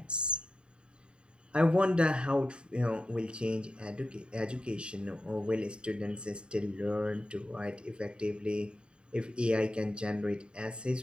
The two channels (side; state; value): left; late; 0.052 ms